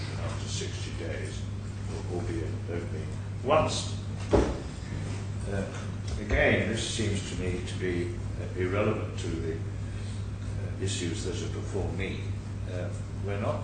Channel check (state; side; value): identical; both; correlation 1.00